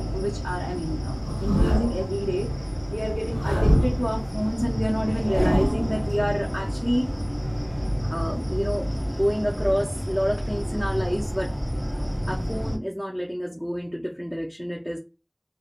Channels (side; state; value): both; identical; correlation 1.00